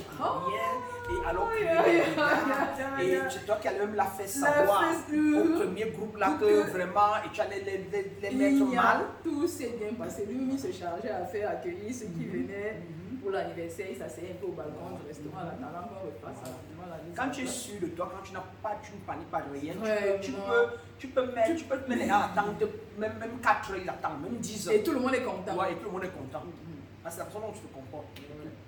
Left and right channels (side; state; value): both; identical; correlation 1.00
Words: rien. Et alors et c'est toi qui allais même la faire savoir au premier groupe là que vraiment, et tu allais les mettre mal. Tout s'est bien passé. Lui, il se chargeait à faire accueillir ceux qui venaient pour l'anniversaire. Il s'asseyait un peu au balcon du restaurant en attendant qu'on repasse rapidement la mise. Quand tu es sûr de toi, quand tu ne paniques pas de rien, tu peux mettre les gens à attendre, même 4 heures, ils attendent, même 10 heures. Et tout le monde est content. Ouais, et tout le monde est content. C'est la façon dont tu te comportes.